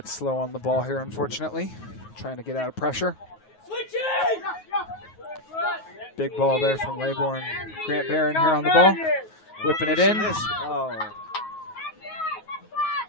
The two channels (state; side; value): late; right; 9.4 ms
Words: slow on the ball here, unfortunately. Trying to get out of pressure. Big ball there from Laybourne. Grant Barron here on the ball. Whipping it in.